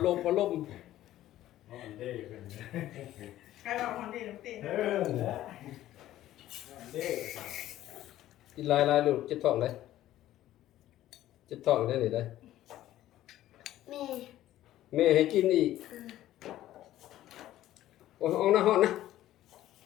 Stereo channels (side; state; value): right; quieter; 13.8 dB